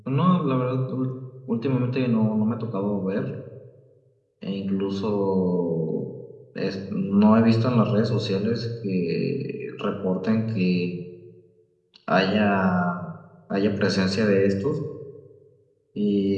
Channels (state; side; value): identical; both; correlation 1.00